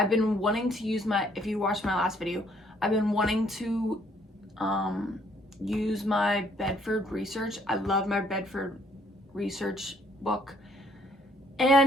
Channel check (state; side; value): normal; both; correlation 0.65